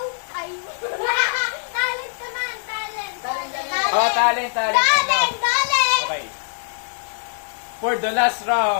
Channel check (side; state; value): right; silent; 64 dB below the other